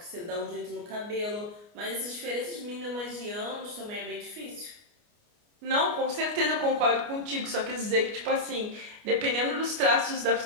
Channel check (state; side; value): late; left; 29 ms